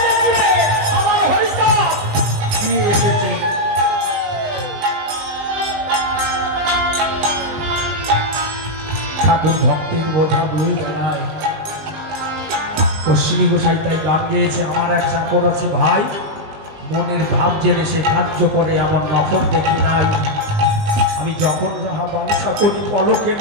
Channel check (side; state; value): left; late; 19 ms